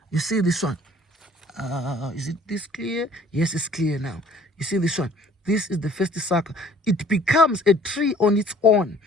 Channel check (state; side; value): normal; both; correlation 0.54